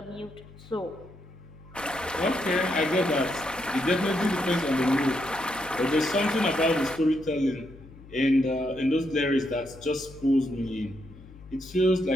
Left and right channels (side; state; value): left; noise; hum, 20 dB below the sound